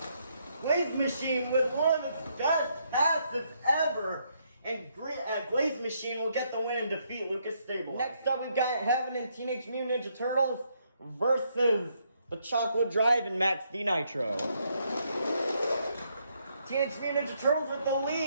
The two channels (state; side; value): inverted; both; correlation -0.74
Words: Glaze Machine with one of its best passes ever, and Glaze Machine will get the win and defeat Lucas Stabilizer. Next up, we've got Heaven and Teenage Mutant Ninja Turtles versus the Chocolate Drive and Max D Nitro. Teenage Mutant Ninja Turtles with the